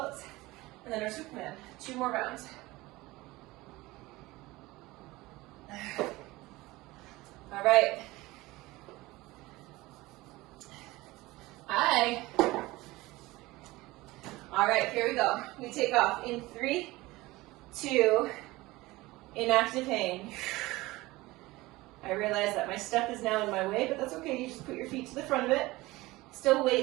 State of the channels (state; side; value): quieter; left; 20.0 dB